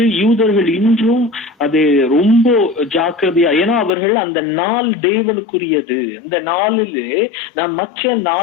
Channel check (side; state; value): right; drops out; at 3.9 s